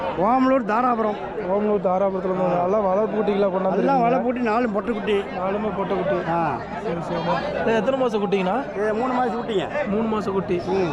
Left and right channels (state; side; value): identical; both; correlation 1.00